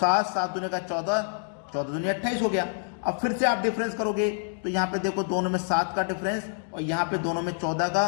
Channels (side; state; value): right; silent; digital silence